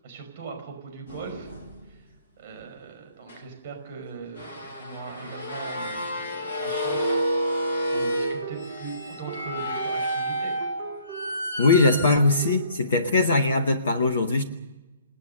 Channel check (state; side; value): inverted; both; correlation -0.60